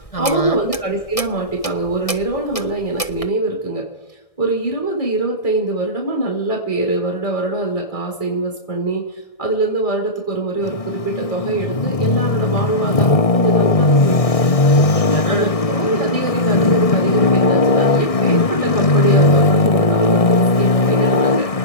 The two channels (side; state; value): right; late; 1.6 ms